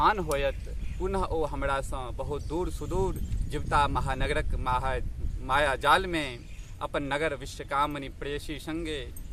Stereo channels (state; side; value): identical; both; correlation 1.00